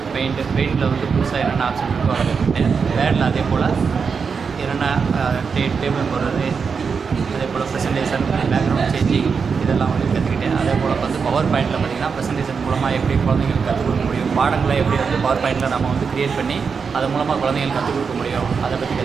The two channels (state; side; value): quieter; left; 5.7 dB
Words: பெயிண்டில் வந்து புதுசாக என்னென்ன ஆப்ஷன் இருக்கோ அதை கற்றுக்கிட்டேன். வேர்டில் அதே போல் என்னென்ன டேபிள் போடுறது, அதே போல் ப்ரெசன்டேஷன், பேக்ரவுண்ட் சேஞ்சிங் இதெல்லாம் வந்து கற்றுக்கிட்டேன். அதே போல் வந்து பவர் பாயிண்டில் பார்த்திங்கன்னா ப்ரெசன்டேஷன் மூலமாக எப்படி குழந்தைங்களுக்கு கற்றுக் கொடுக்க முடியும், பாடங்களை எப்படி வந்து பவர் பாயிண்டில் நம்ம வந்து க்ரியேட் பண்ணி அது மூலமாக குழந்தைங்களுக்கு கற்றுக் கொடுக்க முடியும், அதை பற்றி